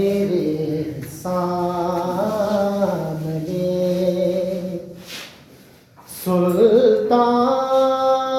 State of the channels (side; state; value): both; identical; correlation 1.00